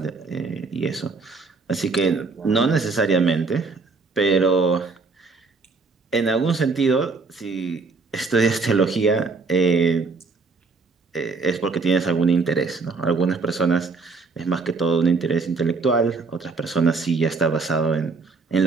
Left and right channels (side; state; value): left; quieter; 4.2 dB